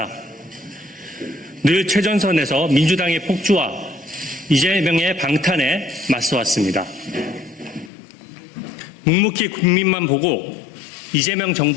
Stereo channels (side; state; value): right; drops out; at 7.9 s